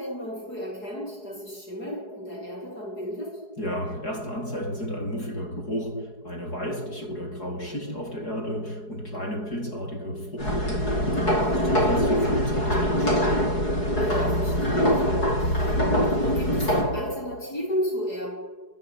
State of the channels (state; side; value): late; right; 4.8 ms